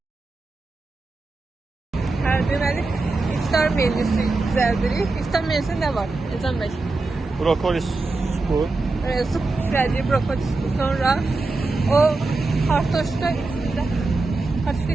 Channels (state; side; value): quieter; left; 3.5 dB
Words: Deməli, iftar menüsü düzəldirik. İftar menüsü nə var? Ecem bəy. Brokoli supu. Su pişirəcək, brokoli supu. Sonra o kartoşka